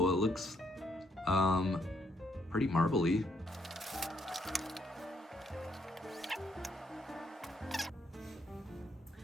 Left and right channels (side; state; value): both; normal; correlation 0.73